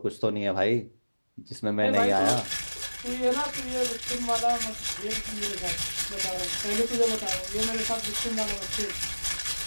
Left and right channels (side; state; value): both; inverted; correlation -1.00